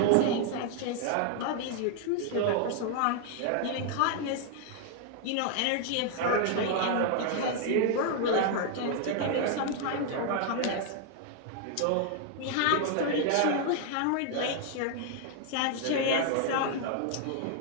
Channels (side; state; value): both; different; correlation 0.00